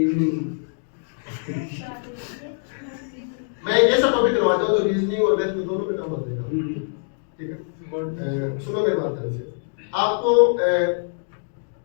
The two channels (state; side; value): silent; right; digital silence